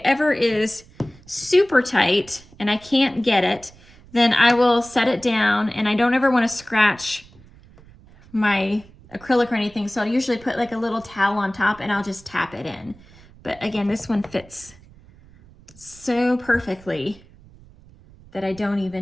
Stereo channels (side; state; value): right; noise; rumble, 24 dB below the sound